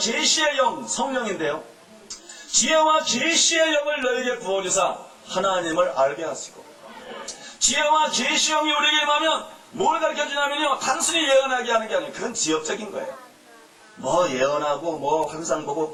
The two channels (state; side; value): identical; both; correlation 1.00